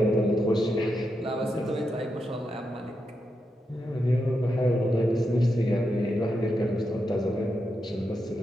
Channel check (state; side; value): normal; both; correlation 0.85